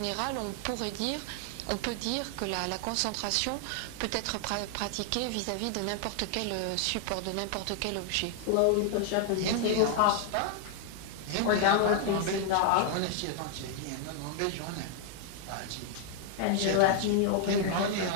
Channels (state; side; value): different; both; correlation 0.00